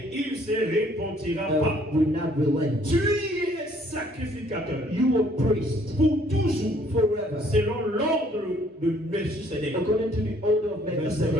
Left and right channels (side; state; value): both; normal; correlation 0.62